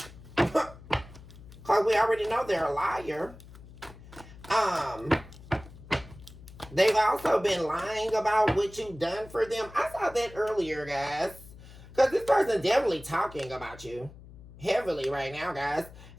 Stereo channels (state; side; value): noise; left; hum, 18 dB below the sound